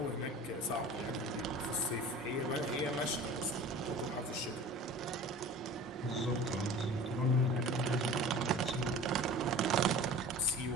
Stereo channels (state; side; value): normal; both; correlation 0.41